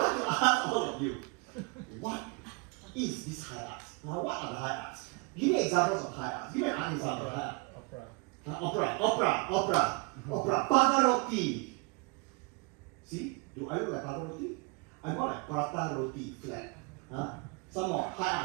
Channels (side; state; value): left; quieter; 31.1 dB